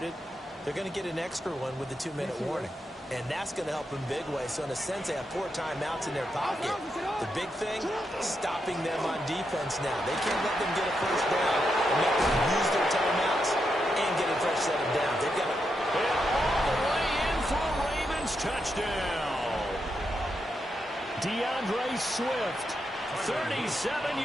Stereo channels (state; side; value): normal; both; correlation 0.83